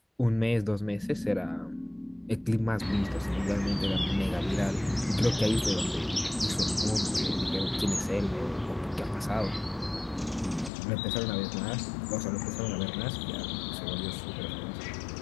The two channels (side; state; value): right; drops out; at 10.7 s